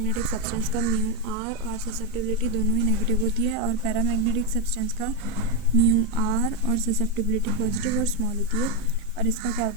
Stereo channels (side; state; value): both; normal; correlation 0.06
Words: सब्सटेंस का म्यू आर और ससेप्टिबिलिटी दोनों ही नेगेटिव होती है, और पैरामैग्नेटिक सब्सटेंस का म्यू आर और ससेप्टिबिलिटी पॉजिटिव और स्मॉल होती है, और इसका क्या